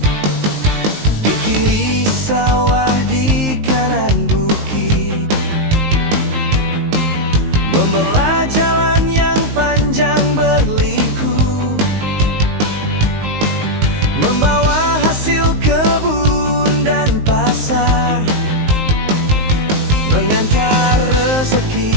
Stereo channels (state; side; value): late; left; 19 ms